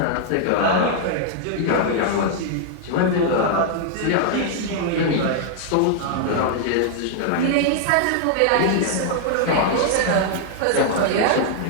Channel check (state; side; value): different; both; correlation -0.01